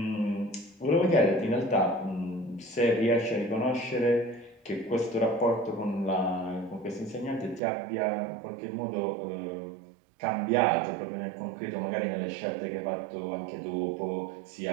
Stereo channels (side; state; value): left; drops out; at 7.6 s